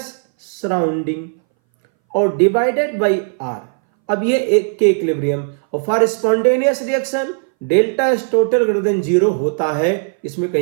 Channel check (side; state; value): left; silent; 63 dB below the other